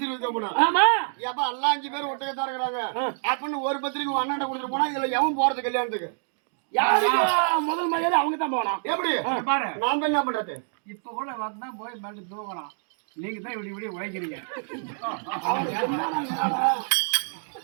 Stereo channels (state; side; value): silent; left; digital silence